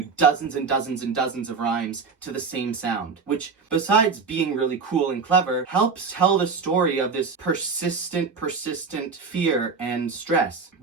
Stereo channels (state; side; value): quieter; left; 5.0 dB